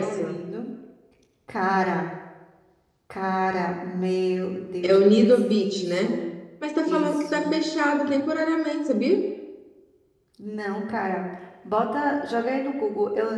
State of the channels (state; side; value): identical; both; correlation 1.00